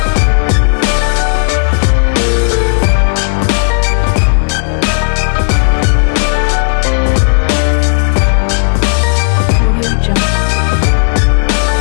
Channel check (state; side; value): silent; right; digital silence